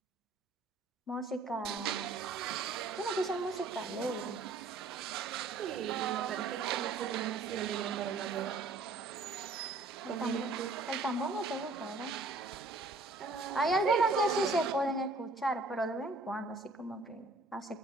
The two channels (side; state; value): left; quieter; 3.5 dB